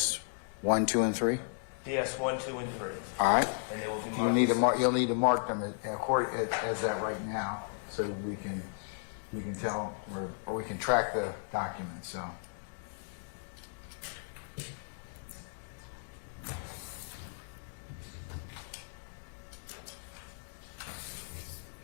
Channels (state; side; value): silent; right; digital silence